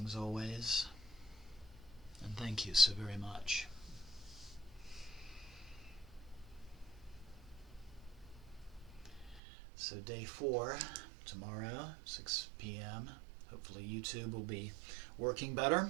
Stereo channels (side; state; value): left; drops out; at 9.4 s